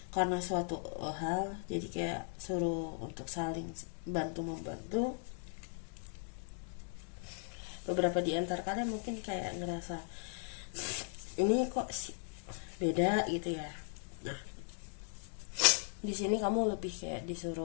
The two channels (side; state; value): right; silent; 53 dB below the other